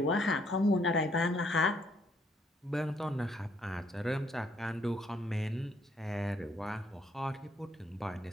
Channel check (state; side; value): normal; both; correlation 0.69